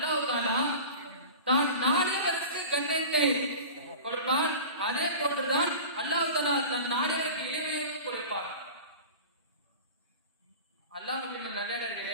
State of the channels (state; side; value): inverted; both; correlation -0.35